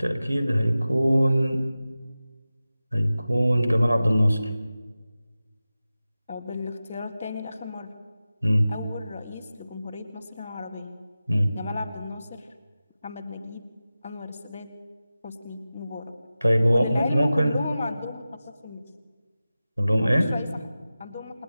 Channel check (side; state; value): both; inverted; correlation -0.95